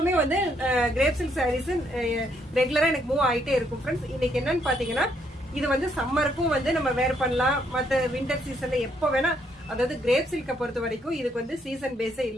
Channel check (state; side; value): normal; both; correlation 0.72